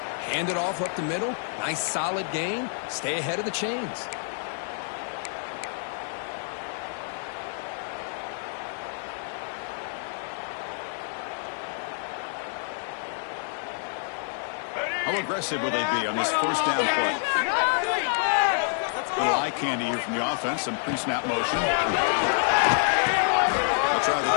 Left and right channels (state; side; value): silent; right; digital silence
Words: hand it off up the middle. Nice solid gain. Stay ahead of the chains. How aggressive will they be on this first down play? A little eye candy here from the offense. Some pre-snap motion. They'll try the